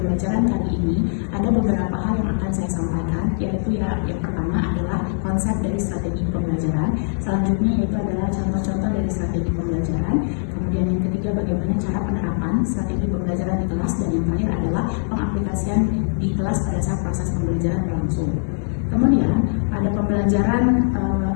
kali ini, ada beberapa hal yang akan saya sampaikan, yaitu yang pertama adalah konsep dari strategi pembelajaran, selanjutnya yaitu adalah contoh-contoh dari strategi pembelajaran, kemudian yang ketiga bagaimana cara penerapan strategi pembelajaran di kelas, dan yang terakhir adalah pengaplikasian di kelas pada saat proses pembelajaran berlangsung. Kemudian pada pembelajaran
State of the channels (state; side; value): silent; right; digital silence